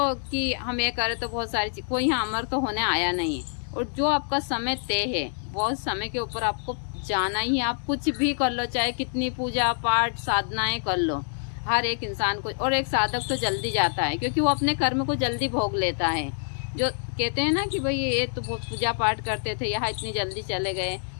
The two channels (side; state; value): right; silent; digital silence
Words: कि हम ये करें तो बहुत सारी चीज़, कोई यहाँ अमर तो होने आया नहीं है। और जो आपका समय तय है बहुत समय के ऊपर आपको जाना ही है। आप कुछ भी कर लो, चाहे कितनी पूजा पाठ साधनाएं कर लो, हर एक इंसान को। और एक साधक तो जल्दी जाता है क्योंकि वो अपने कर्म को जल्दी भोग लेता है। जो कहते हैं ना कि भाई ये तो बहुत पूजा पाठ करते थे यहाँ इतनी जल्दी चले गए,